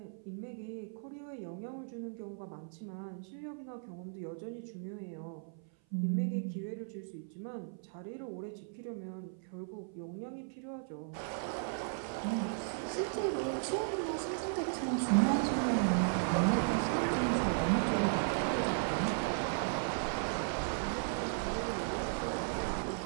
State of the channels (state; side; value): silent; left; 54 dB below the other